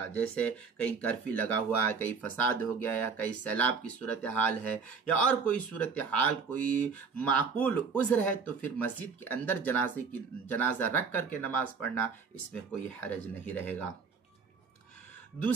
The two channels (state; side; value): quieter; left; 5.4 dB